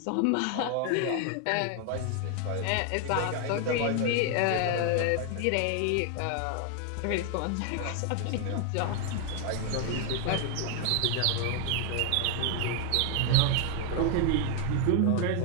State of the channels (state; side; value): different; both; correlation 0.00